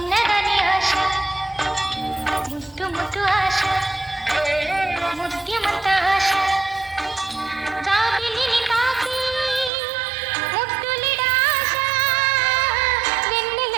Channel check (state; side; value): drops out; left; at 9.7 s